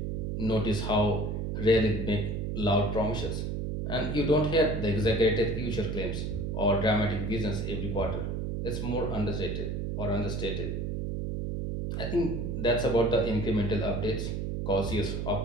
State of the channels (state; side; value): noise; right; hum, 2 dB below the sound